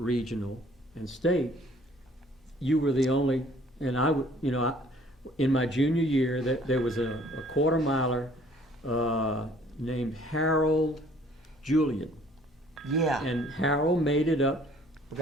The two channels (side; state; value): both; normal; correlation 0.57